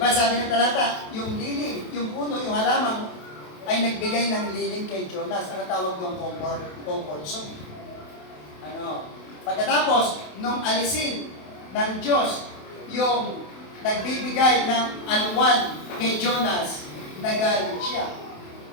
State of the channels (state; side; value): late; right; 28 ms